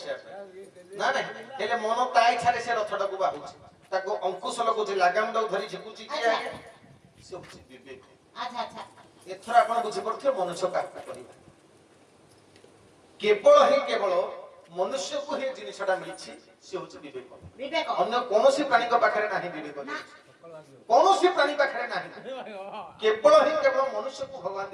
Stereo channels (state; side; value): identical; both; correlation 1.00